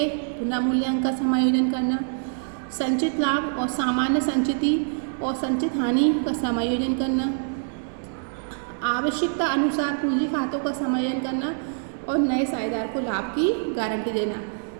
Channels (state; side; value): silent; left; 62 dB below the other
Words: पुनर्मूल्यांकन का समायोजन करना, संचित लाभ और सामान्य संचिति और संचित हानि का समायोजन करना, आवश्यकता अनुसार पूंजी खातों का समायोजन करना और नए साझेदार को लाभ की गारंटी देना।